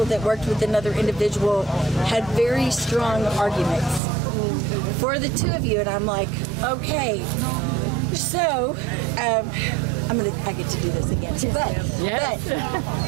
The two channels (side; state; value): left; drops out; at 4.0 s